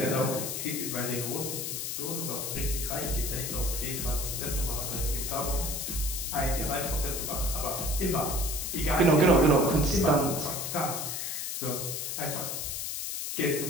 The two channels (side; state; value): left; noise; hiss, 3 dB below the sound